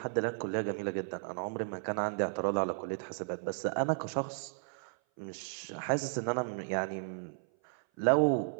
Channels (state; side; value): silent; left; 55 dB below the other